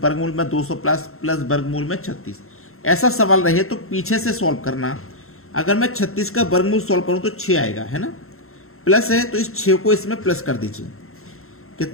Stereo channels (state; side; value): late; right; 0.62 ms